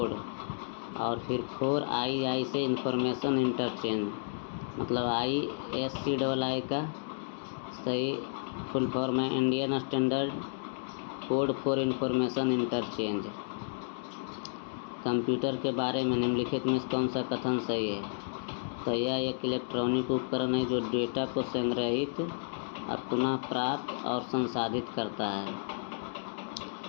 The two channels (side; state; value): right; silent; digital silence